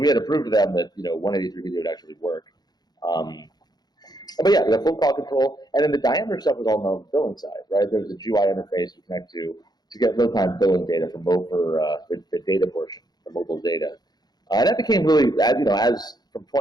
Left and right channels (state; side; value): late; right; 0.20 ms